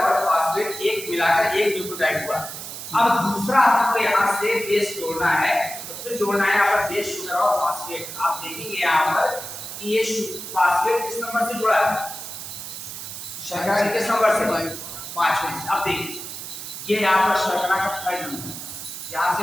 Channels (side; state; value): right; noise; hiss, 9 dB below the sound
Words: फास्फेट एक मिलाकर एक न्यूक्लियोटाइड हुआ। अब दूसरा आपको यहाँ से बेस जोड़ना है, तो फिर जोड़ना है यहाँ पर बेस, शुगर और फास्फेट। आप देखेंगे यहाँ पर कि ये फास्फेट किस नंबर से जुड़ा है? शर्करा किस नंबर से? 5वें से। अब देखिए ये यहाँ पर शर्करा का 5 नंबर, यहाँ